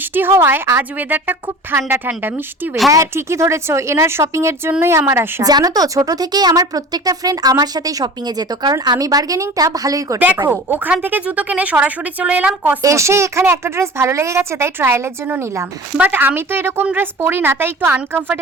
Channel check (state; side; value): normal; both; correlation 0.39